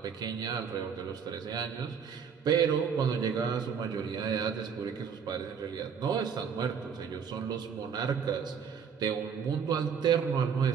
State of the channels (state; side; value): quieter; left; 6.9 dB